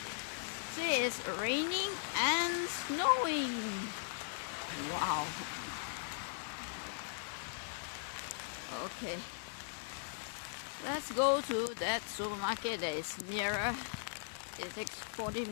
See, it's raining and snowing. Wow. Okay. Let's go to that supermarket that is nearer. It takes 40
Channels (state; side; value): silent; right; digital silence